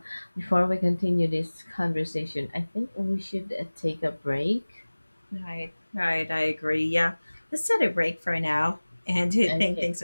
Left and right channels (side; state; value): both; inverted; correlation -1.00